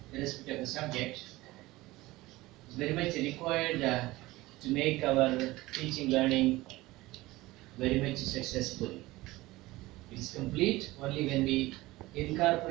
irrespective of the subject. It's very much required to make our teaching learning very much successful. It is complete only when we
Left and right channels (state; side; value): quieter; left; 19.2 dB